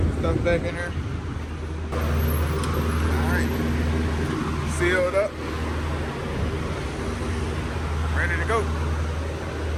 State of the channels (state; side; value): identical; both; correlation 1.00